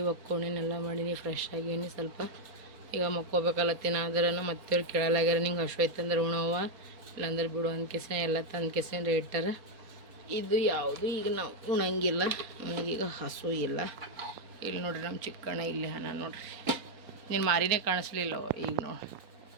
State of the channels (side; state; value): left; late; 4.3 ms